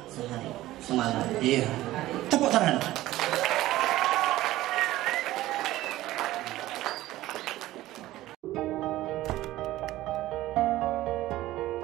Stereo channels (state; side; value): quieter; left; 16.0 dB